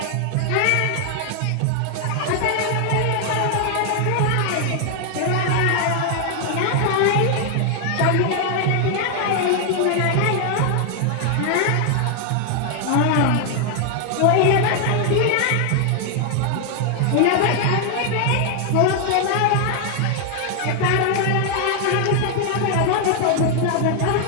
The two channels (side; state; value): both; different; correlation 0.00